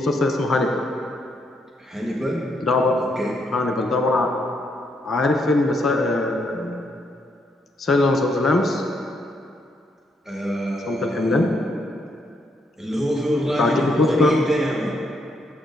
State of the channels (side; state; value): both; normal; correlation 0.75